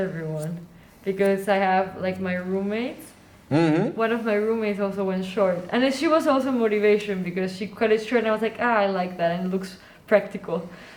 because I have like my roommates. Mm-hmm. One of my roommates also went short, and then she was also motivation because she cut it short, and I was like, I like that, and it looks practical.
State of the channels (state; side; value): identical; both; correlation 1.00